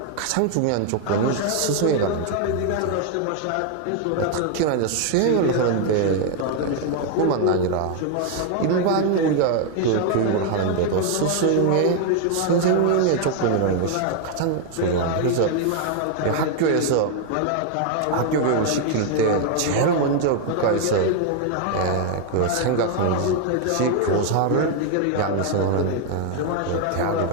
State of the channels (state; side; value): different; both; correlation 0.00